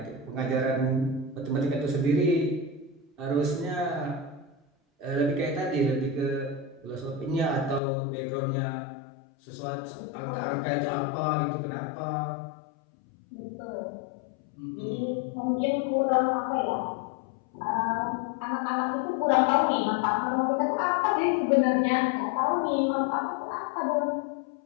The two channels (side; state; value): right; drops out; at 7.8 s